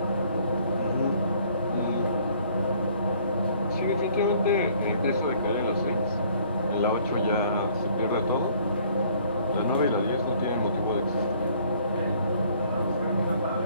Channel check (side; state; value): both; inverted; correlation -0.59